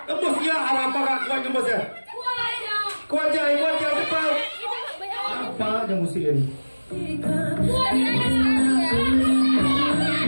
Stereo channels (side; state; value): both; inverted; correlation -1.00